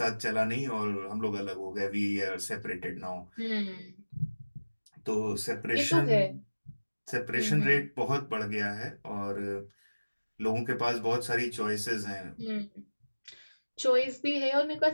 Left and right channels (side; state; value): both; inverted; correlation -1.00